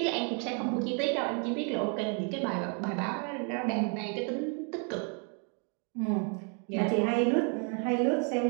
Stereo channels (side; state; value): left; quieter; 39.2 dB